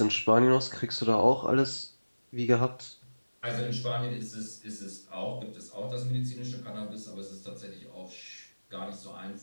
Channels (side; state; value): both; inverted; correlation -1.00